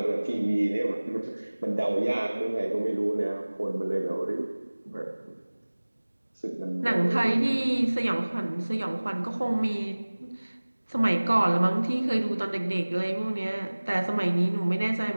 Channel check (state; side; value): inverted; both; correlation -1.00